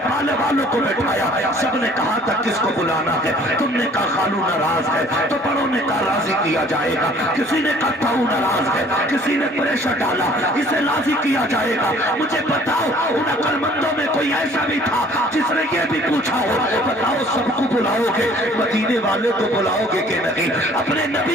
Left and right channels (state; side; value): normal; both; correlation 0.54